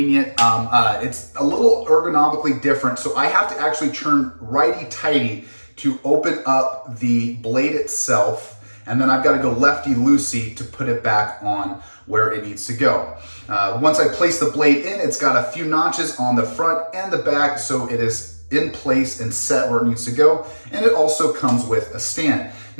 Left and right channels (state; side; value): inverted; both; correlation -1.00